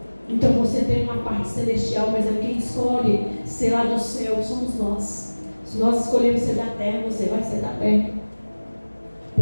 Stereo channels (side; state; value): both; inverted; correlation -1.00